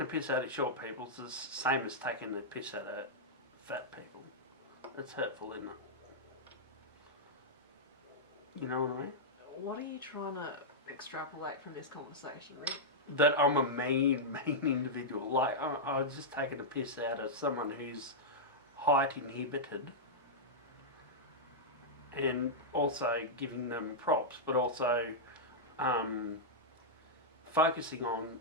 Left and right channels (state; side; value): normal; both; correlation -0.08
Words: piss out of short people is the same as taking the piss out of fat people. It's hurtful, isn't it? You know what I mean? What are you trying to extrapolate from this conversation, Rick? That I'm a mean individual. Like, I was just taking a piss out of someone who's height inhibited and also giving them props, but also focusing on